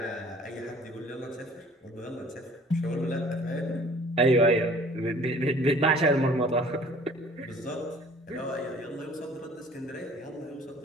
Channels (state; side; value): normal; both; correlation 0.51